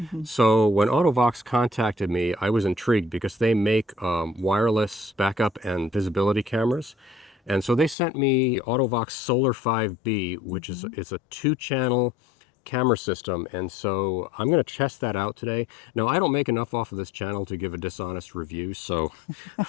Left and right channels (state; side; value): drops out; right; at 8.0 s